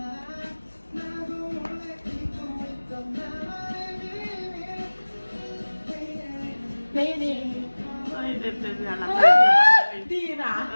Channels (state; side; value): inverted; both; correlation -1.00